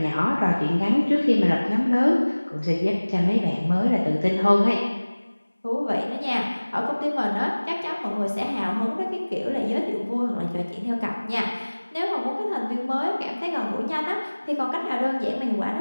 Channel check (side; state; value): both; inverted; correlation -1.00